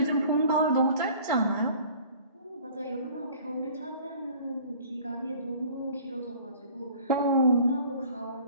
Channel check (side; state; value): both; inverted; correlation -0.50